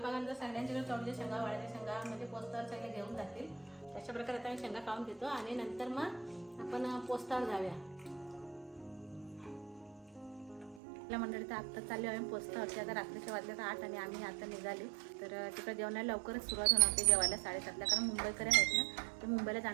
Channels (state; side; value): drops out; left; at 10.8 s